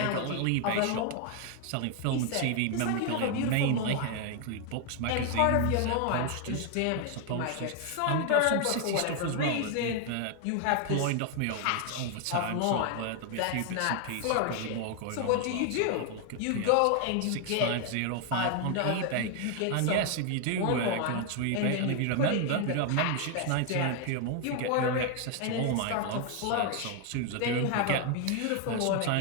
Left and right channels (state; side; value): different; both; correlation 0.00